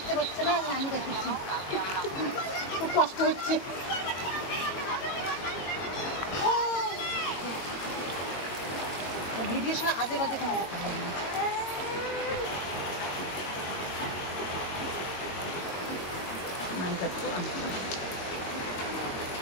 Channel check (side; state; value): right; late; 22 ms